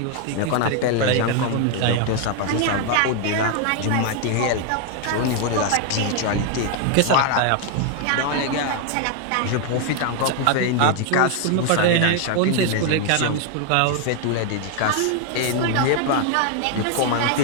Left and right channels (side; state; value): both; different; correlation 0.01